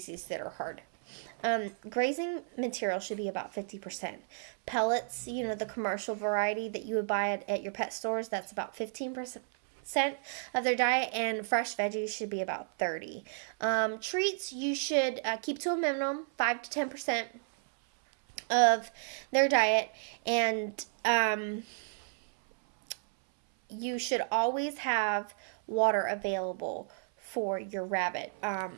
that are hard. Grazing material should be about 50%. Pellets, the commercial variety that you would buy at your pet stores, that's about 15% of their diet, and fresh veggies should be about 30. Treats you should keep to a minimum 5 to 10% of their diet, and you should always have water available for your rabbit.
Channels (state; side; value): silent; left; 56 dB below the other